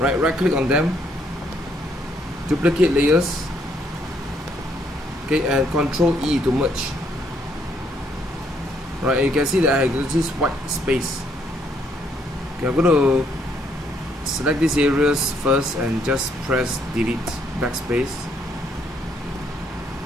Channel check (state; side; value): normal; both; correlation 0.70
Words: click on them, duplicate layers, okay, and Ctrl E to merge. Right, you can see that I have this white space. Okay, I'm going to select these areas first and just press delete, backspace.